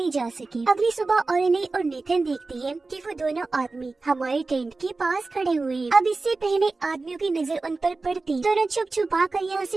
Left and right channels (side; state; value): left; quieter; 3.6 dB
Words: जा सके। अगली सुबह ऑरली और नेथन देखती है कि वो दोनों आदमी हमारे टेंट के पास खड़े हुए हैं। अब इससे पहले आदमियों की नजर उन पर पड़ती, दोनों छुप छुपा कर यहाँ